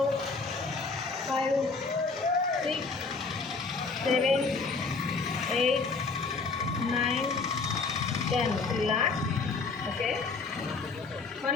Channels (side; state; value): right; quieter; 4.2 dB